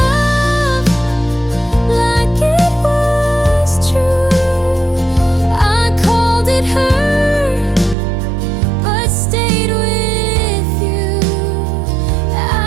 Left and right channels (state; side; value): drops out; left; at 8.0 s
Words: like it was true. I called it hurt, but stayed with you.